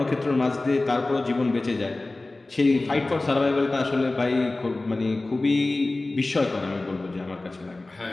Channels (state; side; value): quieter; right; 3.0 dB